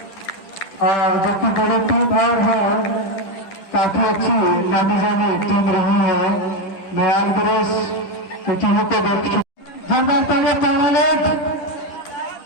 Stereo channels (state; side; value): late; right; 10 ms